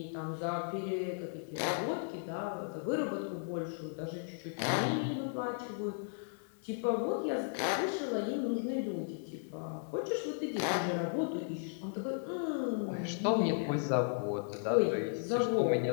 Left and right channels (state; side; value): silent; right; 54 dB below the other